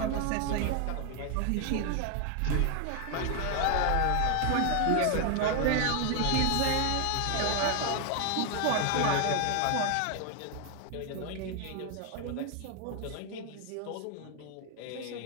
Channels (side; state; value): both; different; correlation 0.01